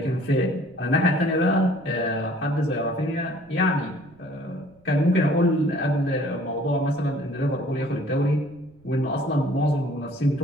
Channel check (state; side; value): noise; right; rumble, 28 dB below the sound